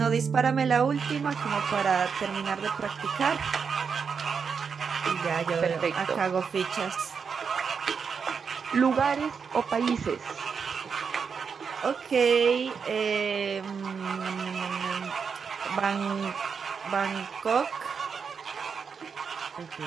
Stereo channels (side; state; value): left; quieter; 6.1 dB